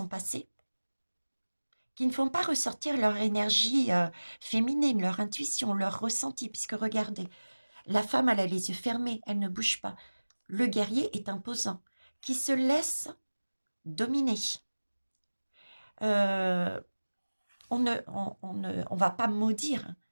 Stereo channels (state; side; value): inverted; both; correlation -1.00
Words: passées, qui ne font pas ressortir leur énergie féminine, leur intuition, leur ressenti, puisque regardez, la femme, elle a les yeux fermés, elle ne bouge pas. Le guerrier est imposant, qui se laisse dominer. On ne va pas maudire.